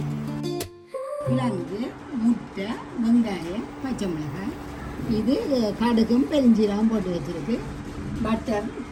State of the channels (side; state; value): both; identical; correlation 1.00